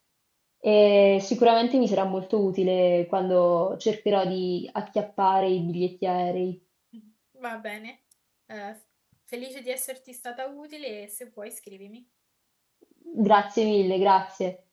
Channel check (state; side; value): identical; both; correlation 1.00